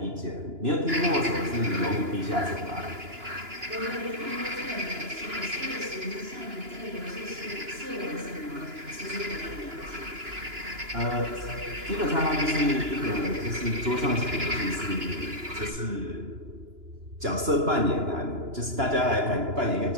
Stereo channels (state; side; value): late; left; 2.9 ms